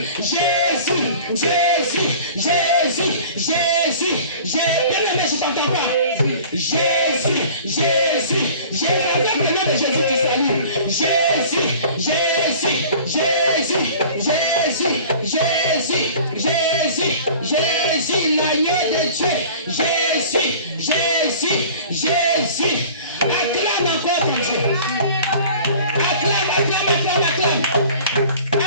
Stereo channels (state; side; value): inverted; both; correlation -0.45